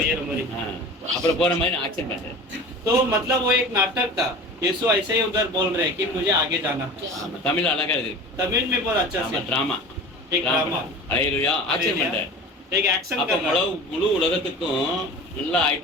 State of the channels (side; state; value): both; normal; correlation 0.37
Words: मरी। அப்புறம் போற மாதிரி ஆக்சன் பண்றேன் तो मतलब वो एक नाटक था। यीशु ऐसे ही उधर बोल रहे हैं कि मुझे आगे जाना है। ஆமா தமிழ் அழகா இருக்கு तमिल में बहुत अच्छा ஆமா से டிராமா एक ड्रामा ஹalleluya ஆக்சன் பண்றேன் एक एक्शन அப்ப करना। முழு உலகத்துக்கும் நல்லா